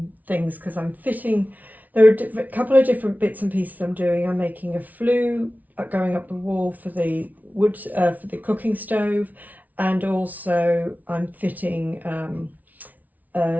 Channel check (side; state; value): left; late; 0.076 ms